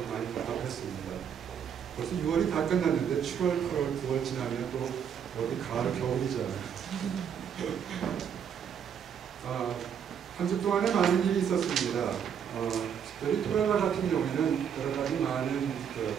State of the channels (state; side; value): quieter; left; 8.0 dB